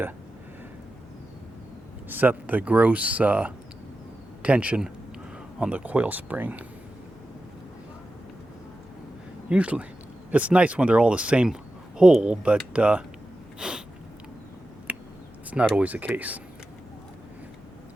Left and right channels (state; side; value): normal; both; correlation 0.92